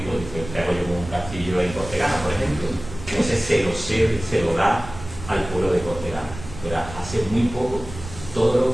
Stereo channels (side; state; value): right; noise; rumble, 13 dB below the sound